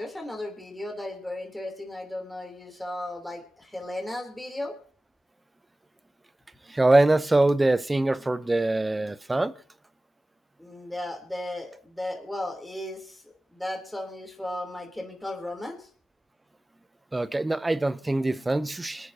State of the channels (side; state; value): both; normal; correlation 0.97